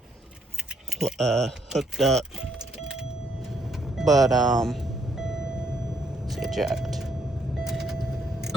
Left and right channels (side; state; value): both; normal; correlation 0.72